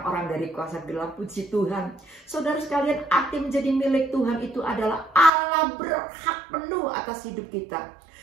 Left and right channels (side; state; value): left; drops out; at 5.3 s